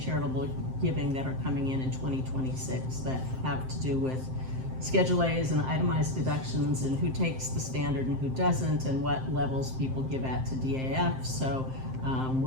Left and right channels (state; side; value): late; left; 7.7 ms